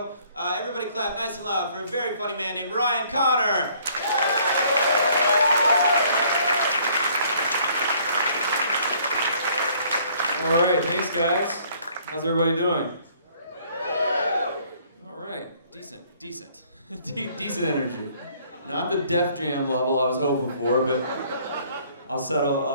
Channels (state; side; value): inverted; both; correlation -0.60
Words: Everybody clap nice and loud for a very funny man named Ryan Connor. All right, thanks guys. How's everybody doing? All right, decent. Decent energy. Not the Def Jam level I was hoping for, but I'll